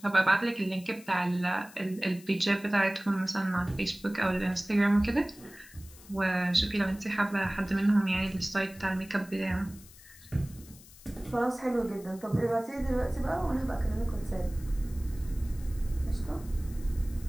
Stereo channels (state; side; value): noise; left; hiss, 21 dB below the sound